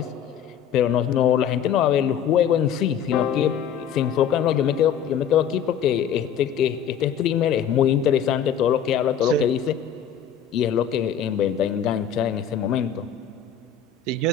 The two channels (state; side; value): quieter; right; 8.2 dB